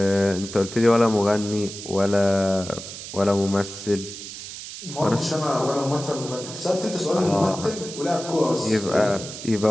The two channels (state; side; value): noise; right; hiss, 11 dB below the sound